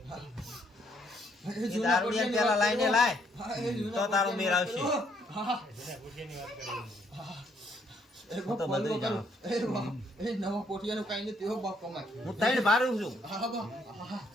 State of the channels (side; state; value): both; normal; correlation 0.69